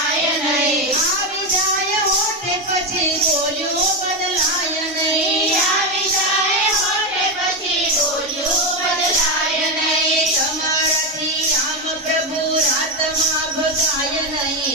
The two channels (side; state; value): both; normal; correlation 0.10